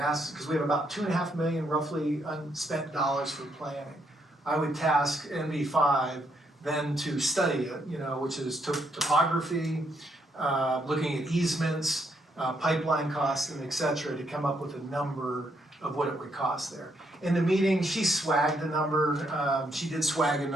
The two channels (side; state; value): both; normal; correlation 0.74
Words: because we have about 2.5 million roughly unspent dollars for planning. I would task NV5 then to study it, you know, which is topography, looking at easements, pipeline costs, and et cetera, to come up with a number of what it would cost there. In the meeting, she swagged a number, she did swag a